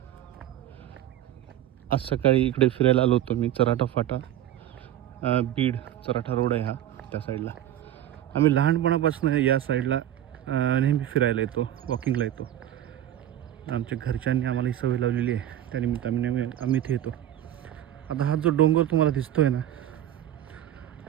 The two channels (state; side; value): quieter; left; 12.1 dB